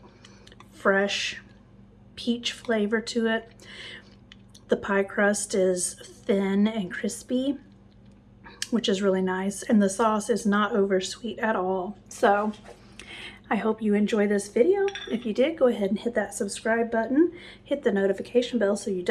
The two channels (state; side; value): identical; both; correlation 1.00